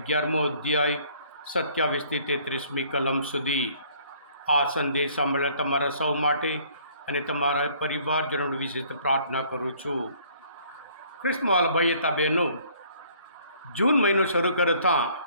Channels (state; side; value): inverted; both; correlation -0.59